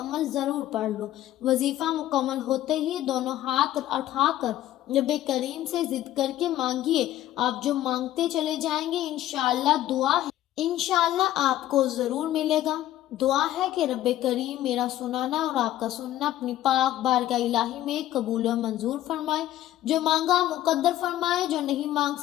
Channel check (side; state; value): right; quieter; 13.6 dB